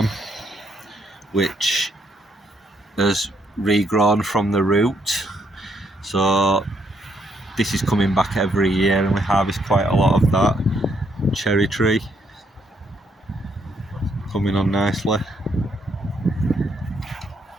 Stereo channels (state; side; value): normal; both; correlation 0.73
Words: which has regrown from the root, so this is coming back every year and we harvest quite a lot of that. Cherry tree coming on nicely,